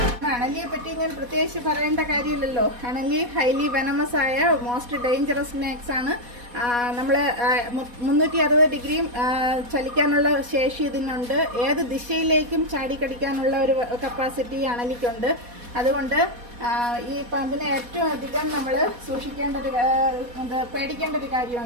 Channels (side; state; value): left; late; 4.1 ms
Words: അണലിയെ പറ്റി ഞാൻ പ്രത്യേകിച്ച് പറയേണ്ട കാര്യമില്ലല്ലോ. അണലി ഹൈലി വെനമസ് ആയ മോസ്റ്റ് ഡേഞ്ചറസ് സ്നേക്സ് ആണ്. നമ്മൾ 360 ഡിഗ്രിയും ചലിക്കാനുള്ള ശേഷി ഇതിനുണ്ട്. ഏത് ദിശയിലേക്കും ചാടിക്കടിക്കാനുള്ള ഒരു കപ്പാസിറ്റി അണലിക്കുണ്ട്. അതുകൊണ്ട് ഈ പാമ്പിനെ ഏറ്റവും അധികം നമ്മൾ പേടിക്കേണ്ട ഒരു